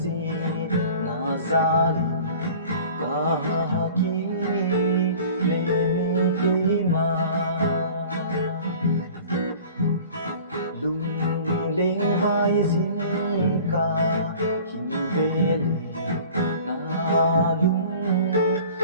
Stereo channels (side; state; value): both; inverted; correlation -0.45